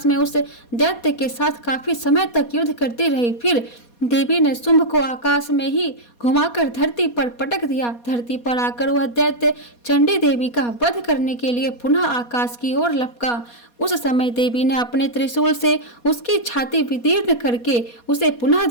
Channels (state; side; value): late; right; 4.2 ms